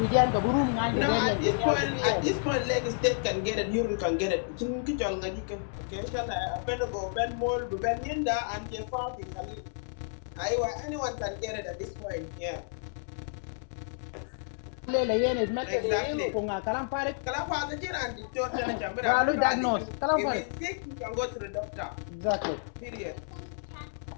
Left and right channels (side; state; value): right; silent; 57 dB below the other